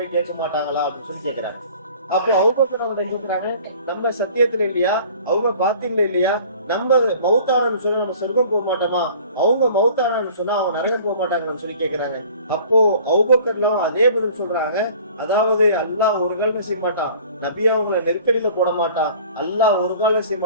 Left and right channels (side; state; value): both; inverted; correlation -0.48